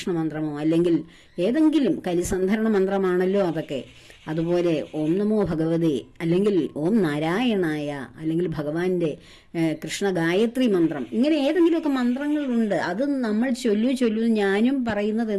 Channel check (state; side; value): identical; both; correlation 1.00